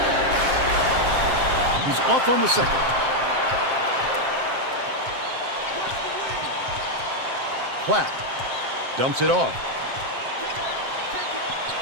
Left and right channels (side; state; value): left; late; 7.6 ms